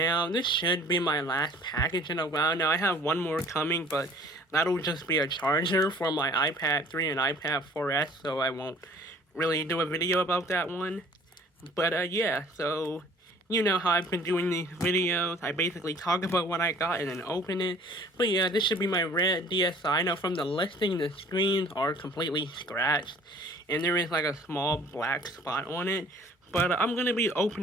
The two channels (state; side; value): normal; both; correlation 0.52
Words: this should be my last package in a while. Now, I have one more coming, but that'll just be a charger for my iPad 3 and iPad 4S, so I won't really do a video about that one. But, yeah, so you know how I've been doing these videos. I basically talk about what I got and then open it. But yeah, this should be my red DSi. Now from the listing, the screens are completely scratched. And there is like a small black spot on it. But I'm going to be